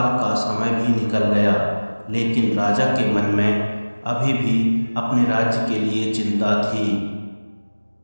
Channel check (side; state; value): both; inverted; correlation -1.00